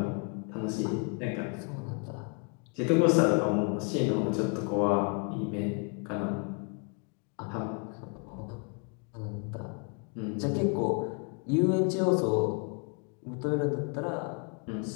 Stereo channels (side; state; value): right; quieter; 36.9 dB